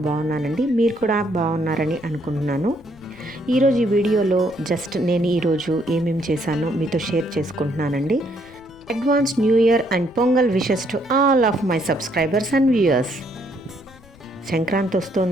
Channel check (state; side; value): noise; left; rumble, 25 dB below the sound